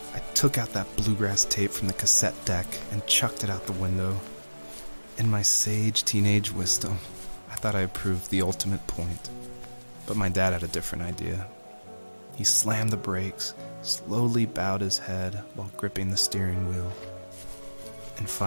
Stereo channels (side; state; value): both; inverted; correlation -1.00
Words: I took out that bluegrass tape from the cassette deck and chucked it out the window. In my sage teenage wisdom, I thought I proved the ultimate point. But my dad had a different idea. He slammed the brakes, slowly bowed his head while gripping the steering wheel, and